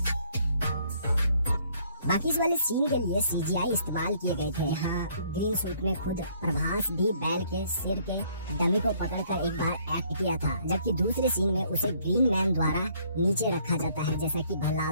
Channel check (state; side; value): inverted; both; correlation -0.64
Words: बाकी इस वाले सीन के लिए CGI इस्तेमाल किए गए थे। यहाँ ग्रीन सूट में खुद प्रभास भी बैल के सिर के डमी को पकड़कर एक बार एक्ट किया था, जबकि दूसरे सीन में उसे ग्रीन मैन द्वारा नीचे रखा जाता है, जैसा कि